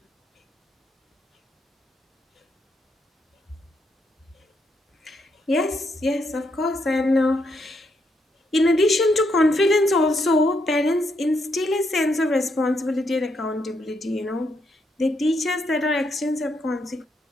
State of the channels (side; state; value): both; normal; correlation 0.78